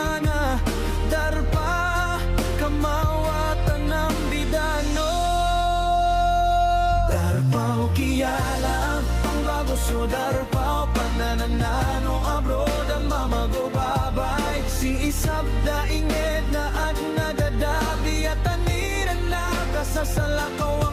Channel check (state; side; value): identical; both; correlation 1.00